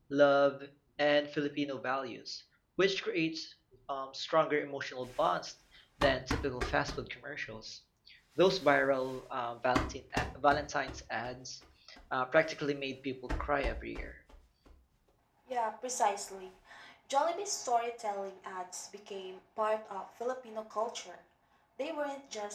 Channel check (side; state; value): both; identical; correlation 1.00